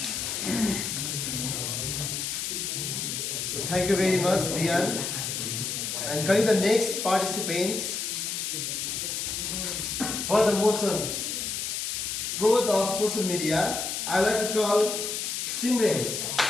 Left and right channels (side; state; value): left; noise; hiss, 3 dB below the sound